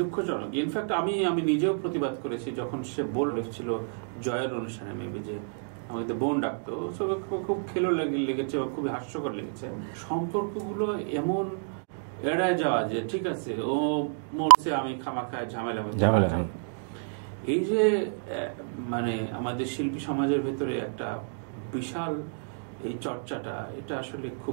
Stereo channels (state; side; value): silent; left; digital silence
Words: দুঃখজনক। ইনফ্যাক্ট আমি নিজেও প্রতিবাদ করেছি যখন সে বলেছিল জয়ের অনুষ্ঠানে, মেবি, যে আমাকে তো বোন ডাকতো, সবাই খুব খেলো লেগেছে, খুবই হাস্যকর লেগেছে। সম্পর্কগুলো এমন এড়ায় যাওয়া যে ঠিক আছে, ও মরছে, আমি খামাখায় ঝামেলা হতে না যাই। এই যে মানে আমাদের শিল্পী সমাজের ভেতরে একটা বিশাল এই চর্চাটা, এটা আসলে